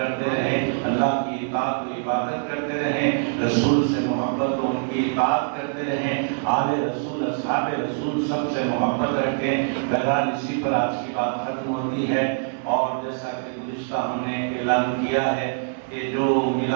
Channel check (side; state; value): left; silent; 63 dB below the other